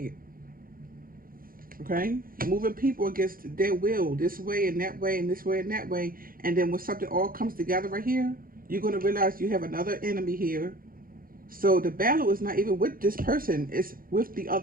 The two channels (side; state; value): left; late; 0.42 ms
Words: Okay, moving people against their will, this way and that way and this way and that way. And then when something all comes together right here, you're going to realize you have another enemy here. So the battle is not even with this person, it's with the